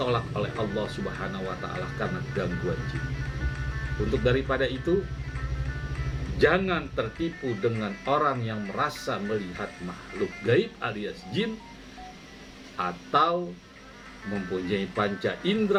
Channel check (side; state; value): both; identical; correlation 1.00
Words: oleh Allah Subhanahu wa Ta'ala karena gangguan jin. Untuk daripada itu, jangan tertipu dengan orang yang merasa melihat makhluk gaib alias jin atau mempunyai panca